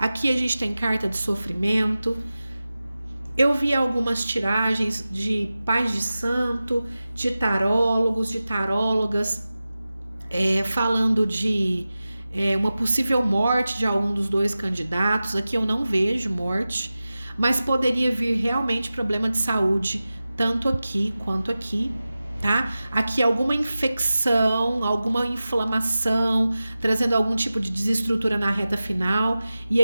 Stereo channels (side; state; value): both; inverted; correlation -0.95